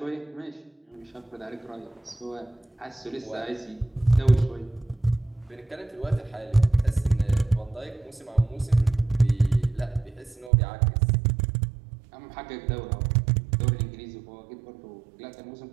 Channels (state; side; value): drops out; left; at 10.5 s